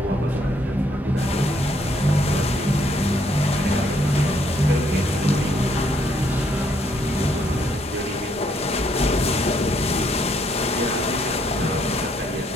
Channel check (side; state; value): both; normal; correlation 0.70